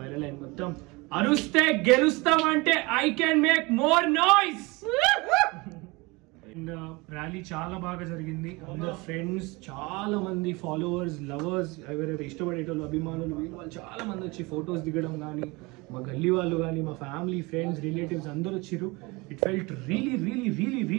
అయిన మొత్తం అరుస్తే గెలుస్తాం అంటే I can make more noise rally చాలా బాగా జరిగింది అందరు ఫ్రెండ్స్ చాలా మంది ఫాలోవర్స్ లవర్స్ ఎవరైతే ఇష్టపడేటోళ్ళు అభిమానులు వాళ్ళు చాలా మంది వచ్చి ఫొటోస్ దిగడం కానీ మా గల్లీ వాళ్ళు కానీ మా ఫ్యామిలీ ఫ్రెండ్స్ రిలేటివ్స్ అందరూ వచ్చారు it felt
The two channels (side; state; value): left; quieter; 24.9 dB